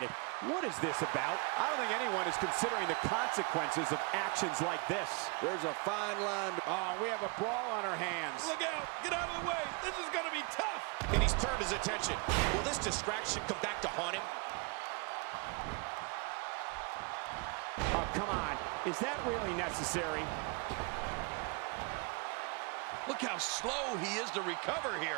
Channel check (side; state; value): left; quieter; 32.1 dB